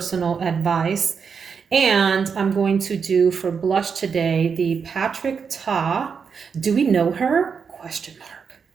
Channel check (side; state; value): left; quieter; 6.1 dB